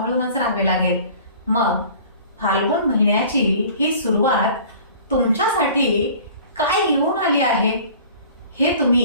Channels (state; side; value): inverted; both; correlation -0.46